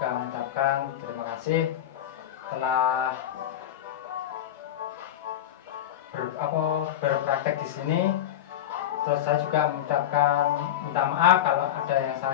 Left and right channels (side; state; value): right; quieter; 11.4 dB